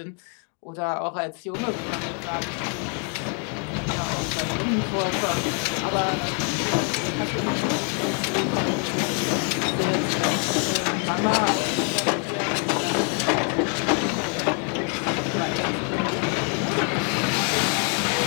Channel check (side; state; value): right; quieter; 39.8 dB